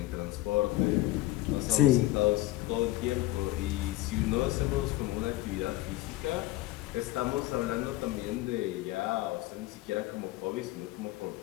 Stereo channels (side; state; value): right; quieter; 17.0 dB